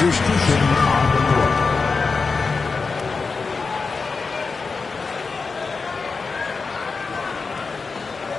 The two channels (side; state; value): right; quieter; 4.5 dB